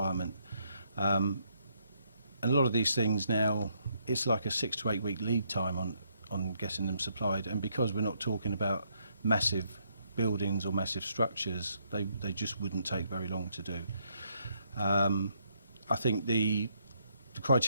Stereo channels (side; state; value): both; inverted; correlation -0.73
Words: And a lot of these things now, it's like a 6 to 8 week lead time on getting them supplied, and because we're not talking about massive buildings or massive structures, they just wouldn't take very long to do. I think the